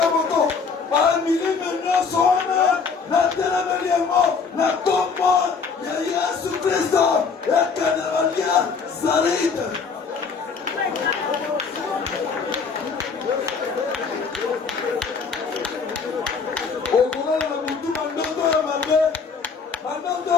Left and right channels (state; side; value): quieter; right; 5.3 dB